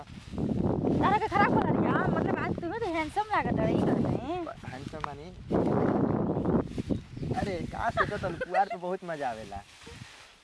तारा के खराब कर रही है मतलब आज तुम्हें तो हैंडसम लागत है। ई कहते हैंडसम बनी। अरे का सोचो तो पुआर पे बहुत मजा आवेला।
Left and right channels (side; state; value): both; identical; correlation 1.00